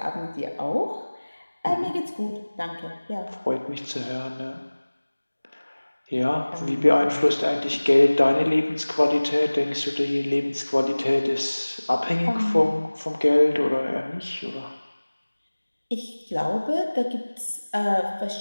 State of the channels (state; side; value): inverted; both; correlation -1.00